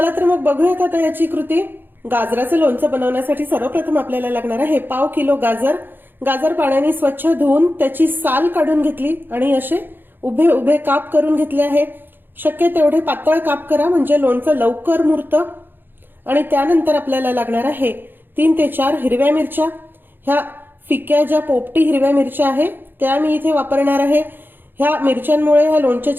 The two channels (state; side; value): late; left; 0.097 ms